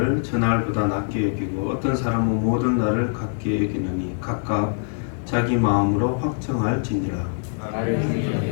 저 날보다 낮게 여기고 어떤 사람은 모든 날을 같게 여기느니 각각 자기 마음으로 확정할지니라.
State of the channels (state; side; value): silent; right; 63 dB below the other